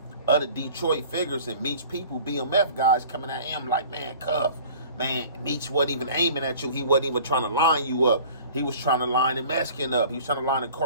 other Detroit figures and Meech people, BMF guys, coming at him like, man, Cuff, man, Meech wasn't even aiming at you. He wasn't even trying to line you up. He was trying to line the Mexican up. He was trying to line the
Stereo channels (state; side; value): inverted; both; correlation -0.46